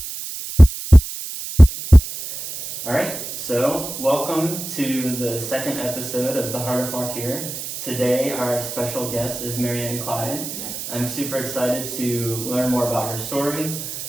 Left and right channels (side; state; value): right; noise; hiss, 8 dB below the sound